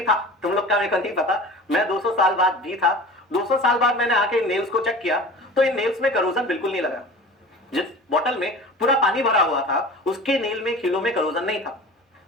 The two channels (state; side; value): normal; both; correlation 0.38